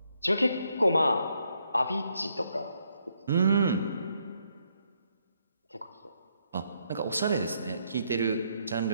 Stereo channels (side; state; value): both; inverted; correlation -0.75